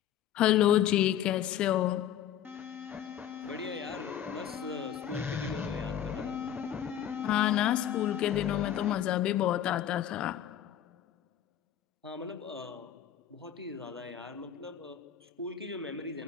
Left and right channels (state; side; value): quieter; right; 10.5 dB